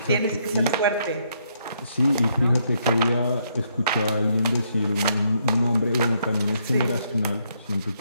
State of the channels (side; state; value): both; inverted; correlation -0.74